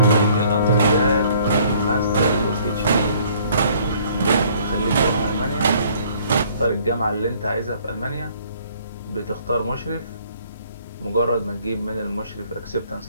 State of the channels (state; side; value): inverted; both; correlation -0.59